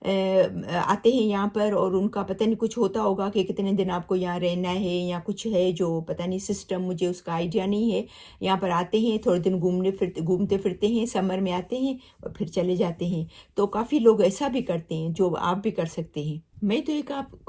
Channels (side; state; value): both; identical; correlation 1.00